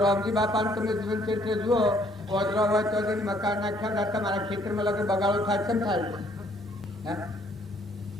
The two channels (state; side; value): normal; both; correlation 0.64